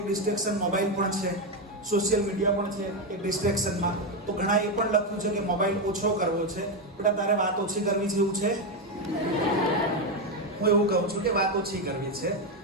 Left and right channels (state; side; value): normal; both; correlation 0.08